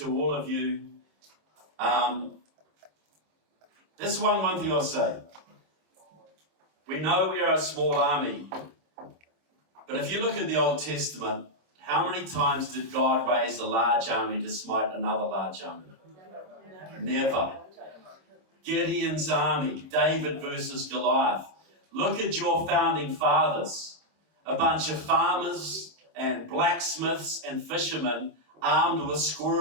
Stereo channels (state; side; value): late; left; 26 ms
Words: all of you, this is one thing I'll say. We know we are a small army, but if you look at the Old Testament, how many times did God raise a large army to smite another large army? Never. Gideon's army, David versus Goliath. Look at your founding fathers. A bunch of farmers and blacksmiths and fishermen armed with